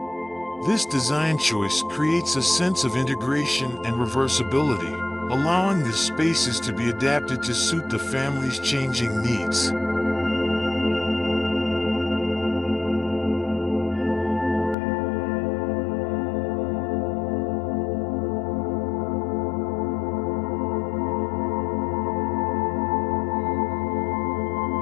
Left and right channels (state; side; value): drops out; right; at 14.8 s